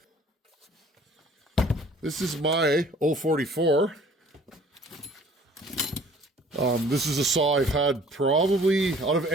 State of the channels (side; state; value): both; normal; correlation 0.53